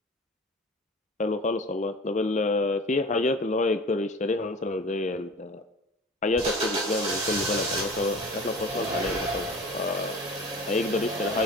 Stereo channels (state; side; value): normal; both; correlation 0.39